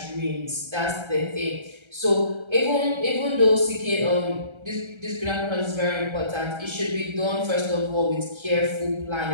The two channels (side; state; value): left; late; 1.3 ms